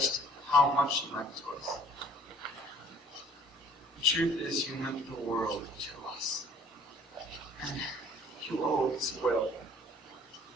how much you meant to us. The truth is you meant the world to us. And you always will.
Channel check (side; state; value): both; normal; correlation 0.55